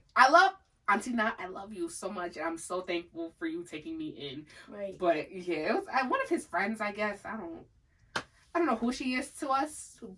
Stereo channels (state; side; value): identical; both; correlation 1.00